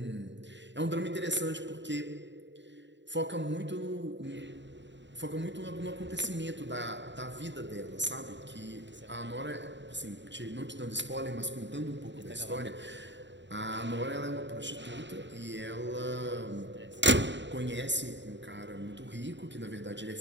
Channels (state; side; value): late; left; 0.53 ms